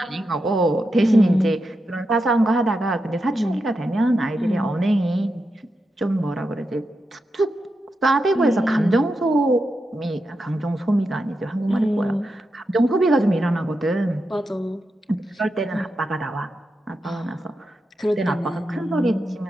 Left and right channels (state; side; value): normal; both; correlation 0.87